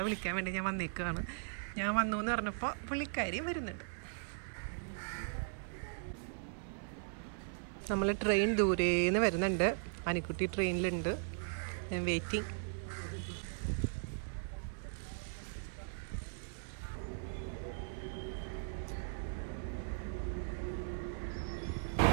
വിളിക്കാൻ വേണ്ടി ഞാൻ വന്നേക്കാണ്. ഞാൻ വന്നു എന്ന് പറഞ്ഞപ്പോൾ പുള്ളിക്കാരിയും വരുന്നുണ്ട്. നമ്മൾ ട്രെയിൻ ദൂരേന്ന് വരുന്നുണ്ട്. അനിക്കുട്ടി ട്രെയിനിലുണ്ട്. ഞാൻ വെയിറ്റിംഗ്.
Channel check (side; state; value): left; silent; 52 dB below the other